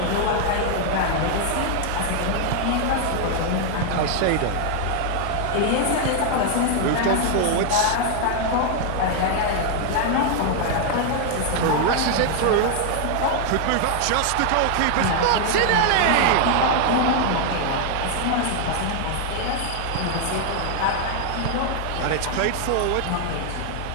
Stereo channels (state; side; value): different; both; correlation 0.00